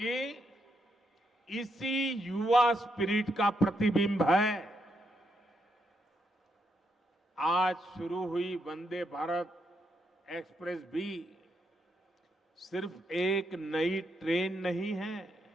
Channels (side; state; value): both; normal; correlation 0.79